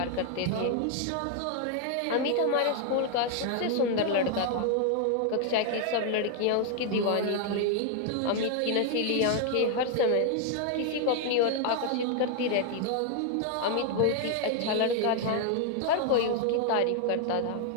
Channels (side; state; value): both; different; correlation 0.00